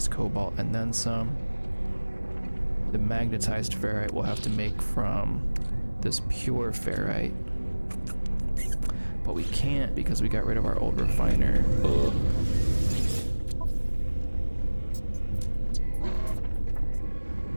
cobalt and then some. The magnetized ferrite we'll have to make from this pure ferrite. But we can't because we got rid of our old refiner. Ugh.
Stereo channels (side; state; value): both; inverted; correlation -1.00